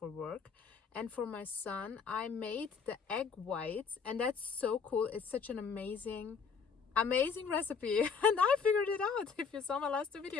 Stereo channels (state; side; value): quieter; right; 5.8 dB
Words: work. And for my son, I made the egg whites, and that's so cool. It's such an amazing recipe, and I figured it out. If you saw my last two